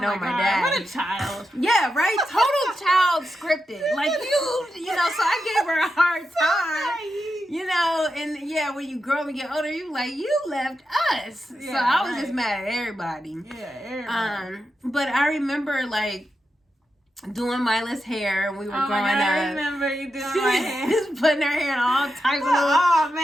know my dad. What a child. Yeah, right? Total child scripted. Like, so I gave her a hard time. And when you grow up and get older, you like, you left us. Yeah, so I was just mad at everybody. Yeah, everybody. But I remember, like, doing Mila's hair when we were growing up. I remember you doing my hair. Just putting her hair in all types of Oh,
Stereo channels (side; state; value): both; normal; correlation 0.88